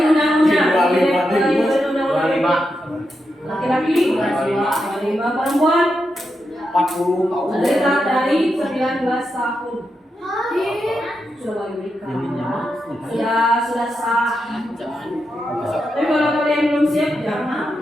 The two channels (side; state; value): both; normal; correlation 0.86